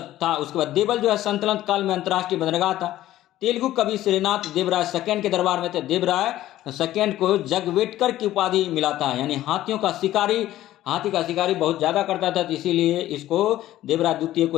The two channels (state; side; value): quieter; right; 14.2 dB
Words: था। उसके बाद देवल जो है सल्तनत काल में अंतर्राष्ट्रीय बंदरगाह था। तेलुगु कवि श्रीनाथ देवराय सेकंड के दरबार में थे। देवराय सेकंड को जगवेटकर की उपाधि मिला था, यानी हाथी का शिकारी बहुत ज्यादा करता था, तो इसीलिए इसको देवराय द्वितीय